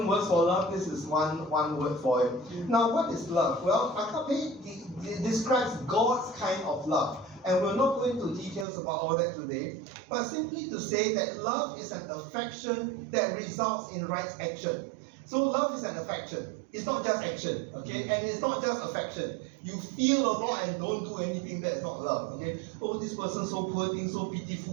words for love. This is one word for it. Now, what is love? Well, agape describes God's kind of love. And we're not going into details about all that today, but simply to say that love is an affection that results in right action. So love is an affection. it's not just action, okay? And it's not just affection. You feel a lot and don't do anything, that's not love, okay? Oh, this person so poor thing, so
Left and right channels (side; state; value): left; drops out; at 8.7 s